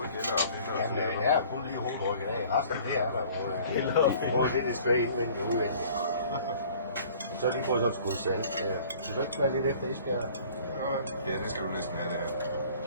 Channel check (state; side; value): inverted; both; correlation -0.51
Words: gælder og finder og Jamen, det er kun lige hovedrykket af. Resten det er der både lidt straight indvendigt og udvendigt. Så lige fået sådan et skud salt. Så du ikke være lidt efter Esbjerg? Ja, det skal du næsten have der.